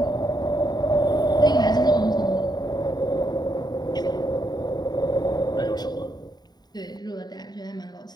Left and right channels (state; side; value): late; right; 0.20 ms